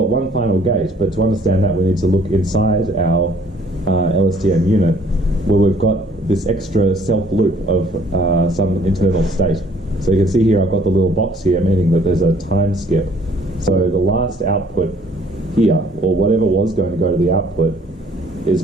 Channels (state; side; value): normal; both; correlation 0.59